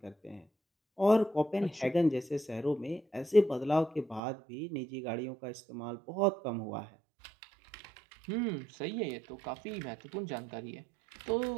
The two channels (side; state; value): left; drops out; at 4.2 s